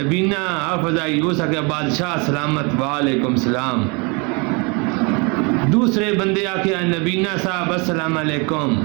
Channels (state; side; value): quieter; left; 30.6 dB